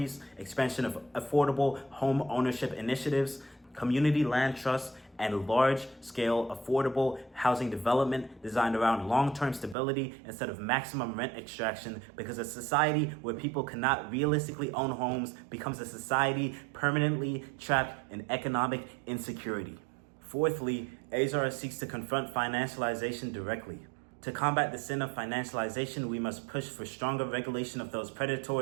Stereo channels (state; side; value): drops out; left; at 9.8 s